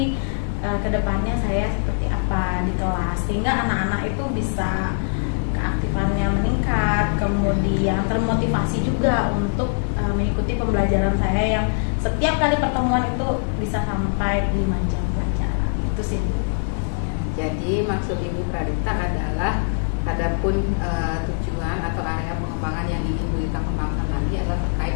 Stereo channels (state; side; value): silent; right; 59 dB below the other